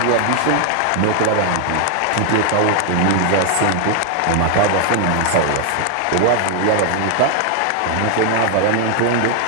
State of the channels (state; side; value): different; both; correlation 0.00